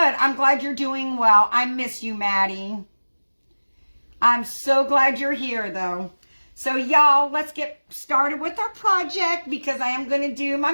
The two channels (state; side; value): inverted; both; correlation -1.00